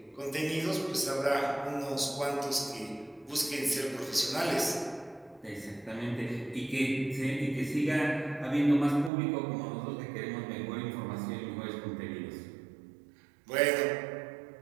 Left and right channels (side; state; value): left; drops out; at 9.1 s